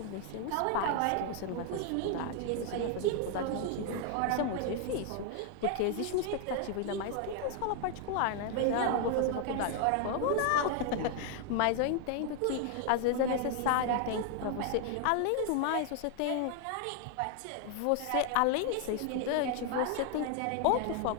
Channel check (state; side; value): different; both; correlation 0.00